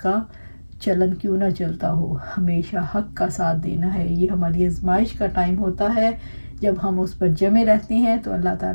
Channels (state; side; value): inverted; both; correlation -1.00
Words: چلن کیوں نہ چلتا ہو. ہمیشہ حق کا ساتھ دینا ہے. یہ ہماری آزمائش کا ٹائم ہوتا ہے. جب ہم اس پر جمے رہتے ہیں تو اللہ